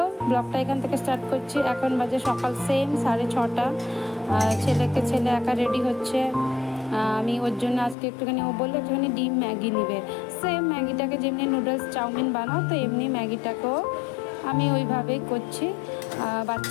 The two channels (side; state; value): right; drops out; at 8.0 s